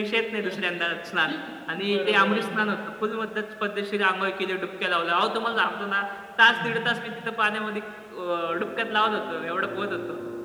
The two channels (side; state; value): both; identical; correlation 1.00